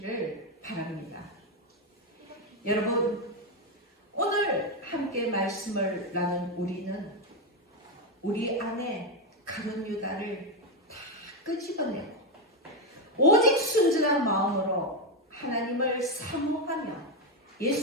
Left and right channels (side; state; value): both; normal; correlation 0.07